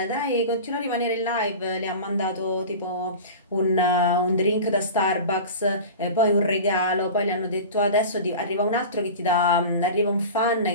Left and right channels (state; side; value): inverted; both; correlation -0.33